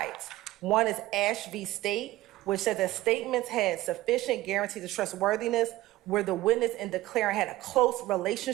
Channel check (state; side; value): quieter; left; 16.8 dB